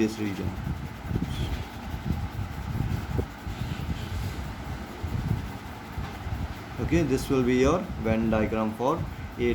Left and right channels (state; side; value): identical; both; correlation 1.00